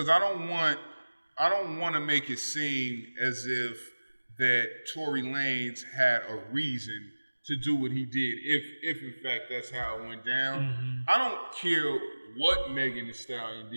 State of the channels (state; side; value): inverted; both; correlation -1.00